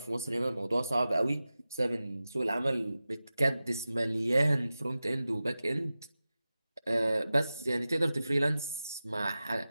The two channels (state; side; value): inverted; both; correlation -0.95